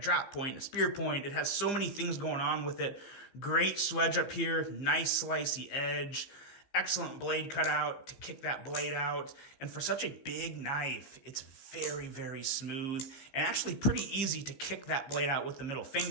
point, a spear point. It has so many things going on with it. Great swedge up here, nice slicey edge, excellent blade cutout to kick that blade out. And for such a big knife, it's very smooth and actually pretty easy to kick that blade out with the middle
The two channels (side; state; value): right; late; 15 ms